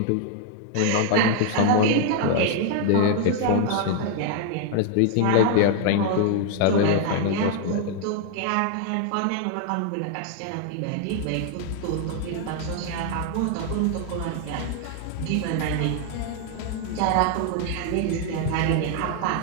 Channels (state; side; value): different; both; correlation 0.00